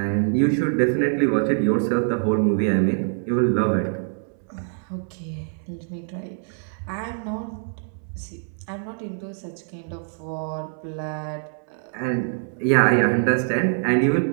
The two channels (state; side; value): silent; left; 62 dB below the other